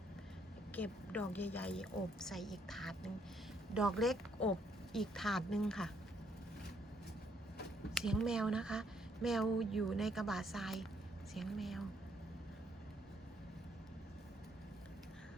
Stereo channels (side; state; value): both; normal; correlation 0.71